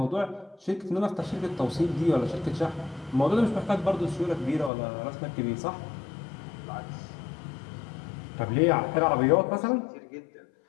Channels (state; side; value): drops out; right; at 4.7 s